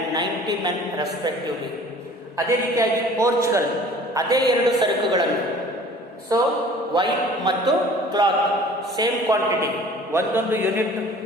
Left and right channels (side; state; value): both; normal; correlation 0.48